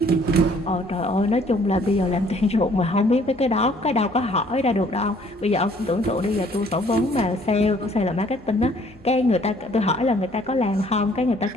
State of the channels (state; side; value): noise; left; hum, 28 dB below the sound